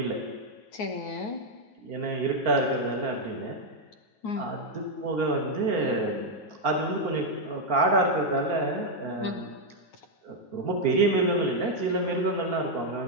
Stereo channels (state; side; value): late; right; 9.4 ms